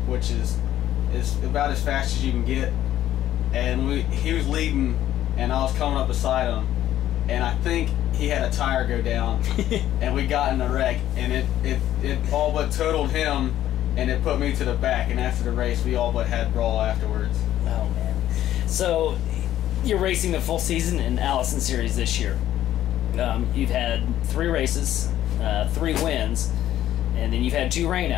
which is about as fast as you can get. And he was leading, and I was coming up beside him, and I think he had a tire go down, and we got in a wreck, and it all but totaled him, and it put me to the back. And after the race, we all but had brawl afterwards. Oh man! So you're racing the full season in Allison Series this year. You've had 3 races, 3 wins, and then you've had 2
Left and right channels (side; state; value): right; quieter; 12.6 dB